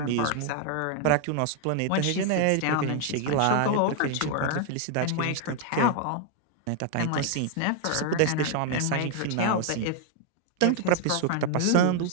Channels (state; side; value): different; both; correlation 0.00